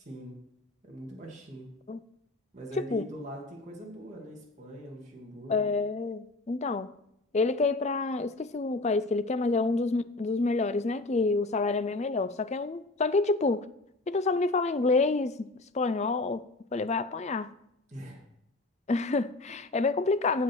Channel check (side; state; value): right; quieter; 3.1 dB